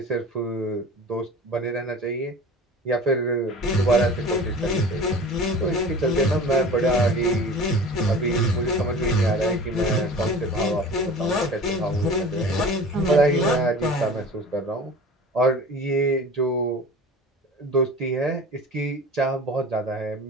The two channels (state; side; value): normal; both; correlation 0.39